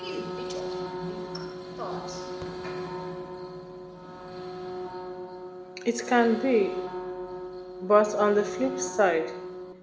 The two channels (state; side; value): identical; both; correlation 1.00